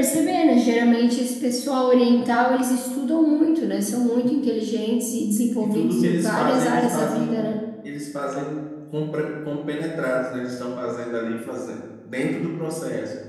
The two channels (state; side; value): identical; both; correlation 1.00